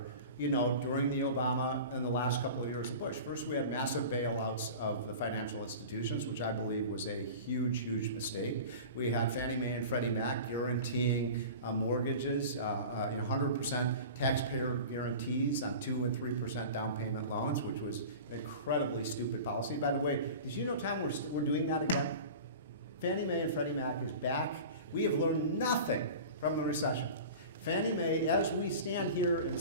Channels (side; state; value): both; inverted; correlation -0.35